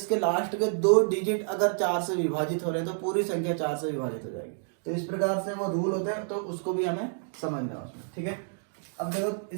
लास्ट के 2 डिजिट अगर 4 से विभाजित हो रहे हैं तो पूरी संख्या 4 से विभाजित हो जाएगी। तो इस प्रकार से वो रूल होते हैं, तो उसको भी हमें समझना है उसमें। ठीक है, अब देखो,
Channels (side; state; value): left; silent; digital silence